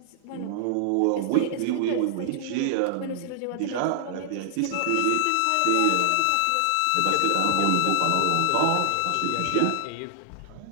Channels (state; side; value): different; both; correlation -0.01